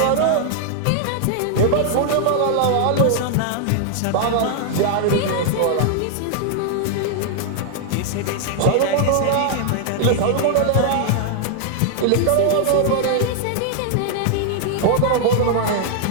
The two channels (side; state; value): both; different; correlation -0.01